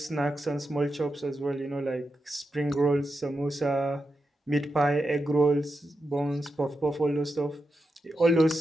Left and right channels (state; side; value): normal; both; correlation 0.88